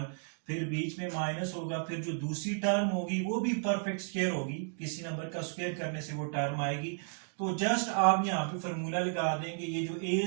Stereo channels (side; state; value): left; silent; 56 dB below the other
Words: फिर बीच में माइनस होगा। फिर जो दूसरी टर्म होगी वो भी परफेक्ट स्क्वायर होगी, किसी नंबर का स्क्वायर करने से वो टर्म आएगी। तो जस्ट आप यहाँ पे फॉर्मूला लगा देंगे। ये जो ए